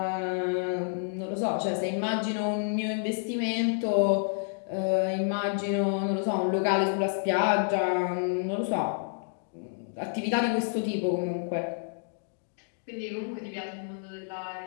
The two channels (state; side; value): silent; right; digital silence